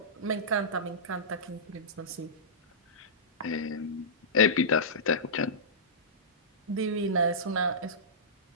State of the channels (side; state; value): both; normal; correlation -0.18